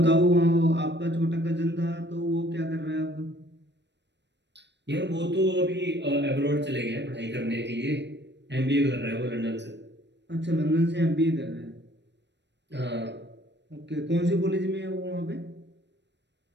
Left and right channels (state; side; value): late; left; 0.51 ms